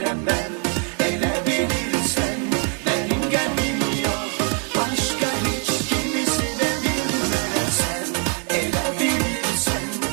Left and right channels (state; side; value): quieter; left; 39.7 dB